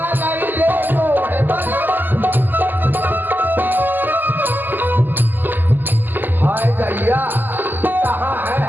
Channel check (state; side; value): late; left; 0.089 ms